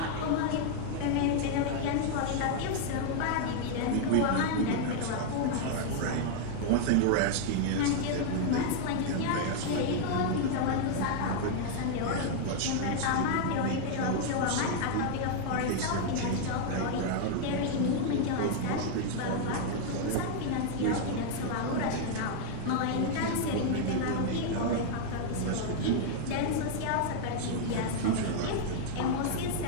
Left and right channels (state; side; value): different; both; correlation 0.00